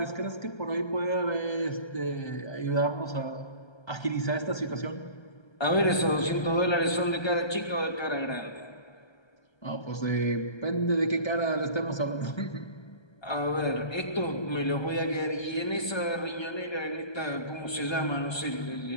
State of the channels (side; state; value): right; late; 1.3 ms